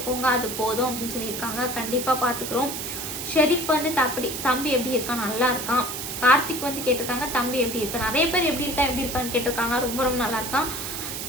அது போதும் அப்படின்னு சொல்லியிருக்காங்க. கண்டிப்பாக பார்த்துக்குறோம். ஷெரீஃப் வந்து தம்பி எப்படி இருக்கான்? நல்லா இருக்கான். கார்த்திக் வந்து கேட்டிருக்காங்க தம்பி எப்படி இருக்கா. நிறைய பேர் எப்படி இருக்கான்னு கேட்டிருக்காங்க. ரொம்ப ரொம்ப நல்லா இருக்கான்.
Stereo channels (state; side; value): noise; right; hiss, 5 dB below the sound